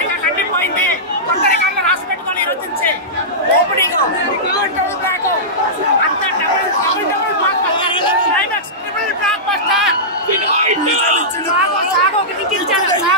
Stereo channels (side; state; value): both; normal; correlation -0.15